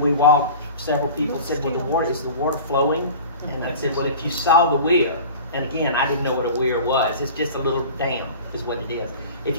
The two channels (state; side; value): inverted; both; correlation -0.38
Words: we walked, several people said, well, is the water flowing? And I said, well, if you saw the weir, and again, I didn't know what a weir was. It's just a little dam is what it is. If